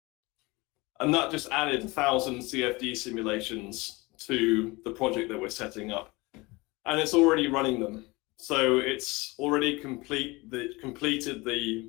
And that just added 1,000 CFD simulations to the project that we're setting up. And it's already running them. So it's already completed the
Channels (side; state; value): right; quieter; 23.6 dB